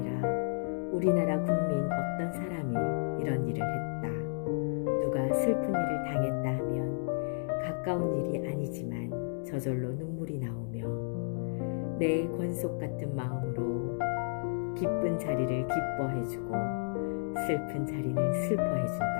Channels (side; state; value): right; silent; digital silence